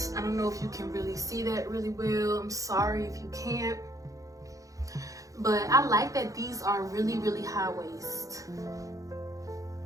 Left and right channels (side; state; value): left; late; 0.16 ms